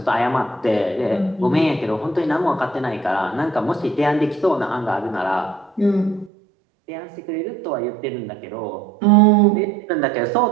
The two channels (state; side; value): drops out; left; at 6.3 s